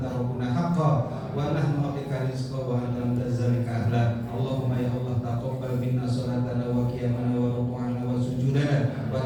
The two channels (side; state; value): both; identical; correlation 1.00